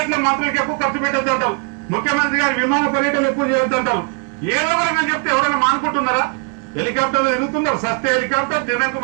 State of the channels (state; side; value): quieter; left; 36.6 dB